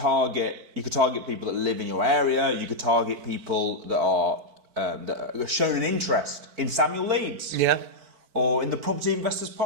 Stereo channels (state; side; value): late; left; 4.5 ms